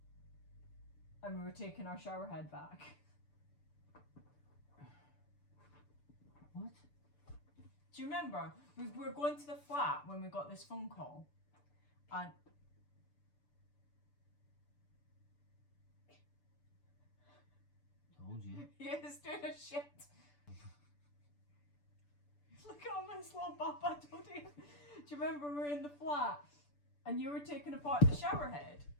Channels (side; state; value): right; late; 6.9 ms